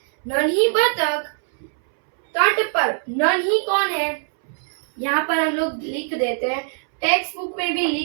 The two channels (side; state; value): left; silent; 64 dB below the other